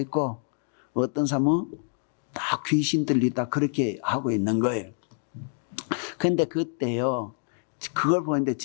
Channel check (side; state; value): right; silent; 60 dB below the other